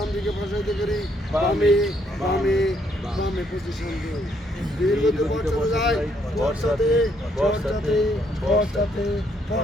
দিকে বসাইতে করি, বামে বামে বামে পজিশন 2, দীর্ঘ পশ্চাতে যাই, পশ্চাতে পশ্চাতে পশ্চাতে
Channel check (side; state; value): both; normal; correlation 0.71